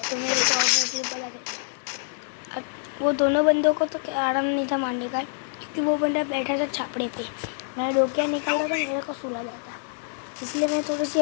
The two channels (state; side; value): silent; right; 61 dB below the other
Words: तो मेरे को ऑब्वियसली पता था। वो दोनों बंदों को तो आराम नहीं था मारने का, क्योंकि वो बंदा बैठा था छापड़े पे। मैं डोकिया निकाला था, मेरे को सुला जाता, इसलिए मैं थोड़ी सी